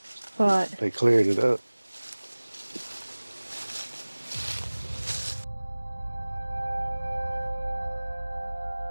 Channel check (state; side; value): inverted; both; correlation -1.00